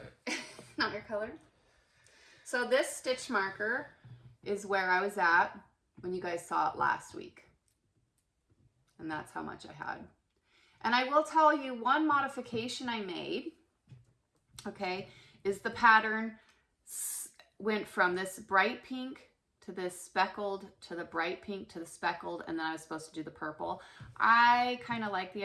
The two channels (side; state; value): both; identical; correlation 1.00